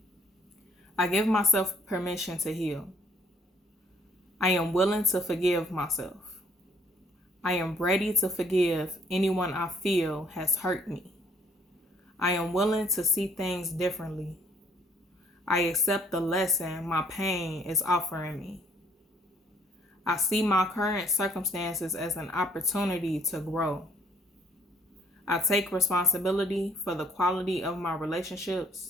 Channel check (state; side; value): normal; both; correlation 0.62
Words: I give myself permission to heal. I am willing to forgive myself. I am ready to forgive anyone I feel has hurt me. I am willing to see things differently. I accept the lesson my pain is offering me. I see my current circumstances as an opportunity to grow. I take responsibility for the quality of my